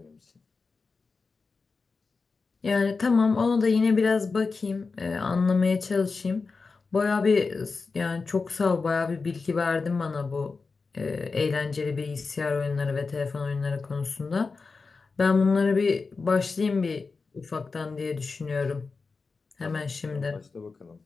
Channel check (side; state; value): right; quieter; 4.4 dB